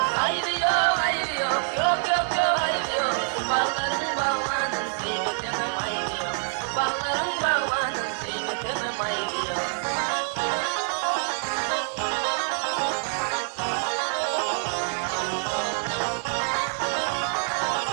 Ayvi yok, ayvi yok, yok yok yok ayvi yok. Bağların bağlanın, kıymetinim ayvi yok. Bağların bağlanın, kıymetinim ayvi yok.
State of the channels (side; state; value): left; silent; digital silence